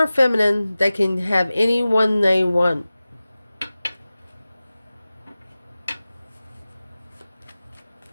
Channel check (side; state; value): both; inverted; correlation -0.96